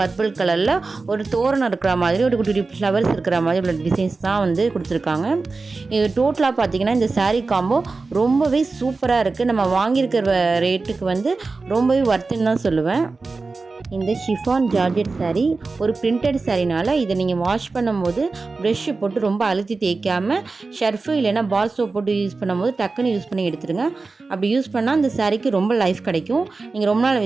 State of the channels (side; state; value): left; quieter; 3.9 dB